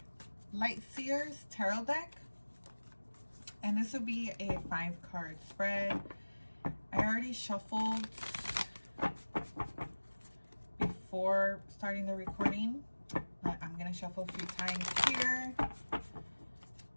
Light Seers Tarot deck, and this will be a 5-card spread. I already shuffled before starting the recording, but I'm going to shuffle a few times here.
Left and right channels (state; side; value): inverted; both; correlation -1.00